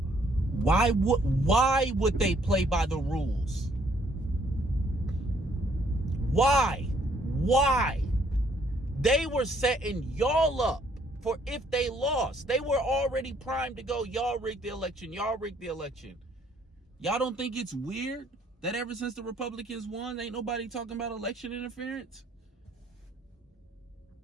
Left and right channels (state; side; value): normal; both; correlation 0.66